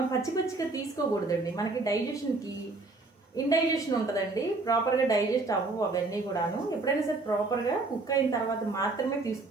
పచ్చిగా తీసుకోకూడదండి. మనకి డైజెషన్కి ఇండైజెషన్ ఉంటుందండి, ప్రాపర్గా డైజెస్ట్ అవ్వవు అవన్నీ కూడాను. ఎప్పుడైనా సరే ప్రాపర్గా కుక్ అయిన తర్వాత మాత్రమే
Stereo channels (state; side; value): quieter; left; 3.4 dB